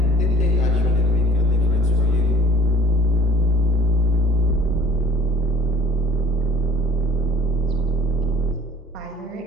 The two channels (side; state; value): both; normal; correlation 0.49